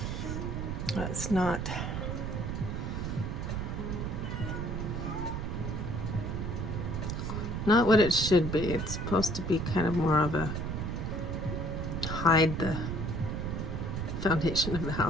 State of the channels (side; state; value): right; noise; rumble, 3 dB below the sound